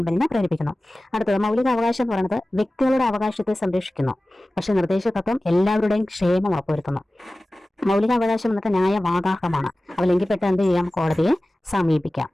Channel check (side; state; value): both; normal; correlation 0.97